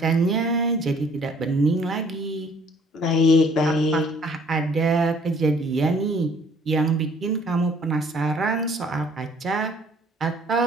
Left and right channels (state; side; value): normal; both; correlation 0.58